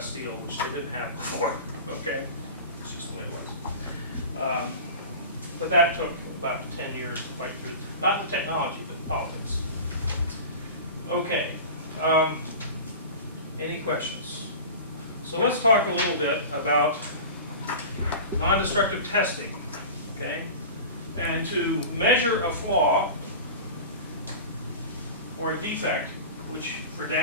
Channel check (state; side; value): inverted; both; correlation -0.33